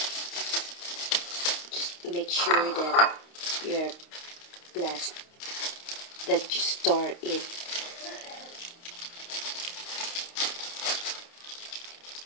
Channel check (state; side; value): late; right; 29 ms